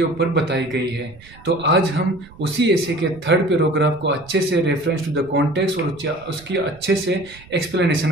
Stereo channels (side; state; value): right; noise; rumble, 23 dB below the sound